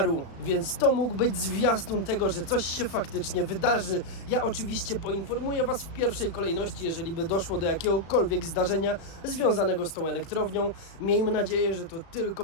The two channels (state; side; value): late; right; 36 ms